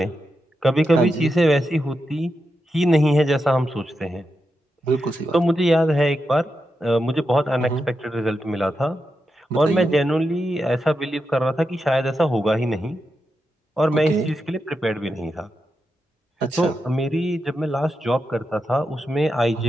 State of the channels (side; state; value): both; normal; correlation 0.87